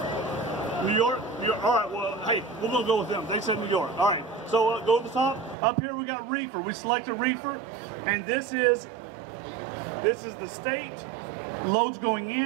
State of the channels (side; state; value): left; drops out; at 5.6 s